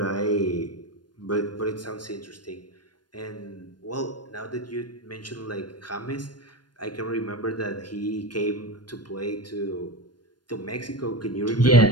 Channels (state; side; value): late; right; 0.71 ms